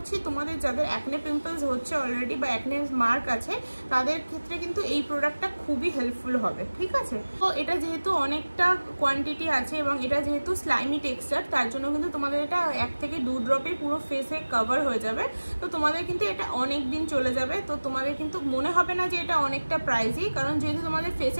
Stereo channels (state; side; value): inverted; both; correlation -1.00